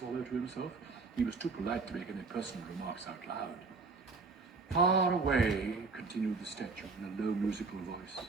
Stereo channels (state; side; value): quieter; left; 4.3 dB